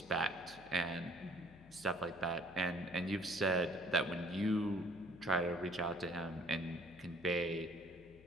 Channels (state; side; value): noise; left; hum, 22 dB below the sound